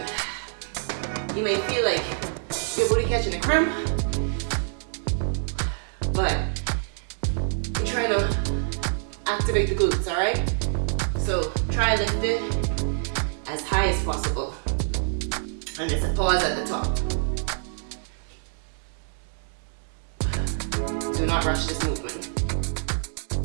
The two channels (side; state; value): left; silent; digital silence